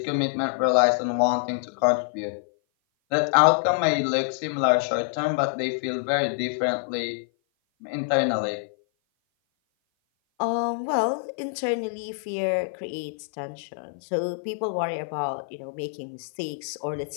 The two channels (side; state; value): right; silent; 56 dB below the other